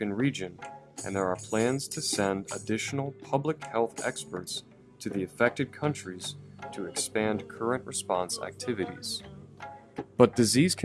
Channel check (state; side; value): identical; both; correlation 1.00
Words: region, and there are plans to send additional public health experts to the affected countries to expand current response activities. But disease